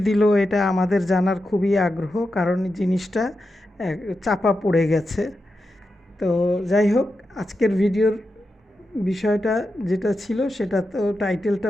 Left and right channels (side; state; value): both; normal; correlation 0.89